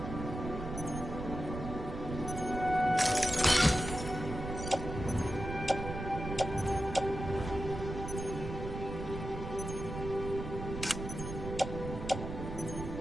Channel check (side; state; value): right; noise; rumble, 7 dB below the sound